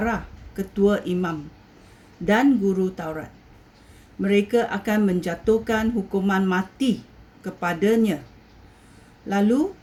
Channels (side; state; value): both; identical; correlation 1.00